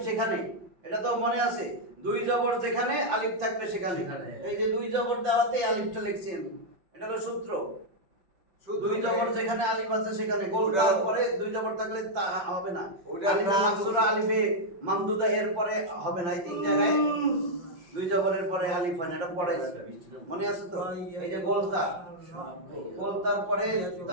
সেখানে, এটা তো মনে আছে, দুই জবর যেখানে আলিফ থাকবে সেখানে। এই যে দুই জবর দেওয়াতে আলিফটা লিখছি আমি, এটা হলো সূত্র। দুই জবর যেখানে আলিফ আছে সেখানে গোল দেওয়ার পরে দুই জবর থাকলে তা হবে না। আলিফে মাকসুরা, আলিফে মামদুদা এর পরে হবে না। এই তিন জায়গায় দুই জবরের পরে আলিফ হয় না, এটা পরে মনে আছে তো? এই যে গোলতা, গোলতার পরে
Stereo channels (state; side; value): late; left; 5.7 ms